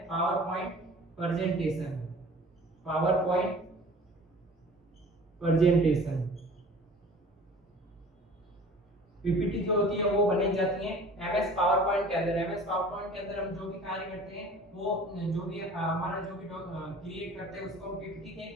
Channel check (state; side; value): normal; both; correlation 0.46